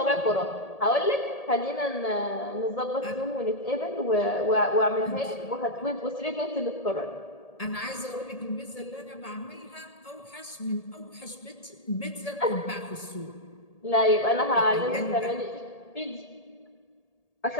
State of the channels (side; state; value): right; late; 1.8 ms